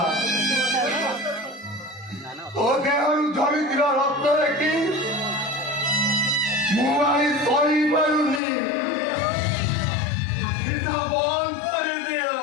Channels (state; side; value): drops out; right; at 8.4 s